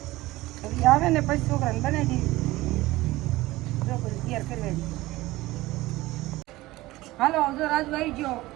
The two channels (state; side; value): quieter; left; 18.5 dB